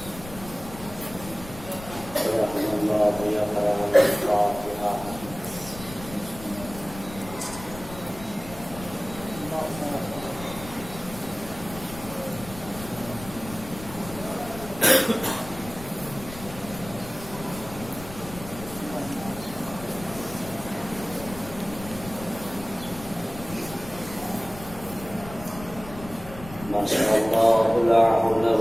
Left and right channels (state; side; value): noise; left; rumble, 14 dB below the sound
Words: माशाअल्लाह ला हौला